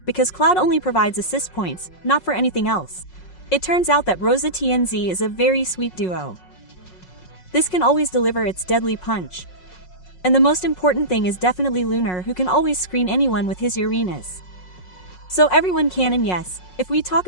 because Cloud only provides assist points, not for anything else. It turns out that Rosa TNZ is a very sweet duo. This can always deliver its deadly punch. And the most important thing is definitely Lunar, who can always screen anyone with his Uranus. So everyone can, and yes, if we talk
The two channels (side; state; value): right; late; 5.5 ms